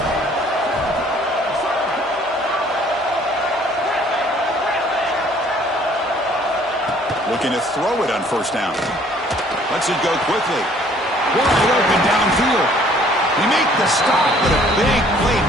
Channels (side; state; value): both; normal; correlation 0.58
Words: Looking to throw it on 1st down. Lets it go quickly. Wide open downfield. They make the stop, but a big play